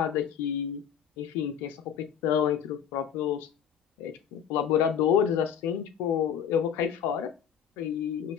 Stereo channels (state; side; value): quieter; right; 8.5 dB